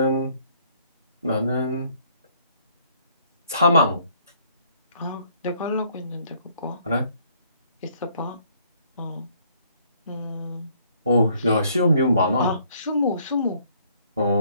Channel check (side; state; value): both; inverted; correlation -0.64